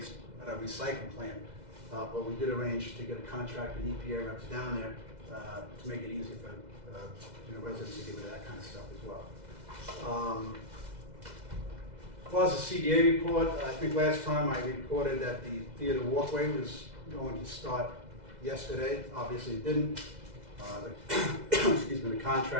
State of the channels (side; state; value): left; late; 2.0 ms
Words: at our recycling plant, but we did arrange to get a contractor and EPA reps down there to make it easier for you know, residents to get rid of that kind of stuff as well. As far as the CDA report, I think last time I reported that the theater walkway was going to start yesterday. Obviously it didn't. Excuse me, the